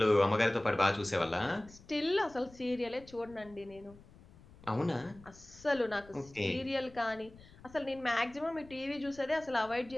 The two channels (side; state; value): left; noise; rumble, 22 dB below the sound